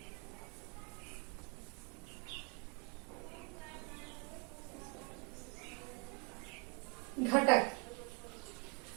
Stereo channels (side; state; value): left; quieter; 32.7 dB